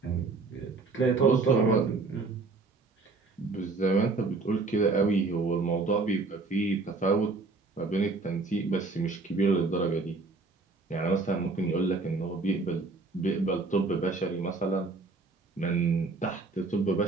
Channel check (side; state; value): left; quieter; 3.8 dB